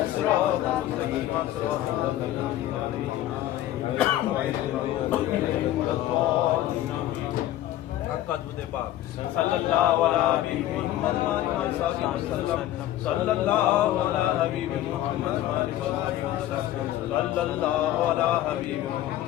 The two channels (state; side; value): quieter; right; 13.6 dB